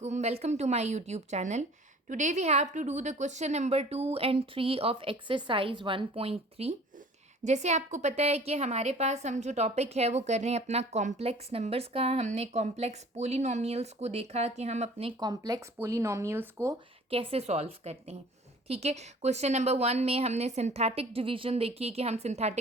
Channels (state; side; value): normal; both; correlation 0.49